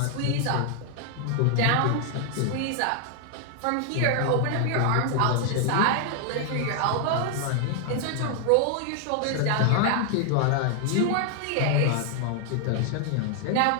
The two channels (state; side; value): different; both; correlation 0.00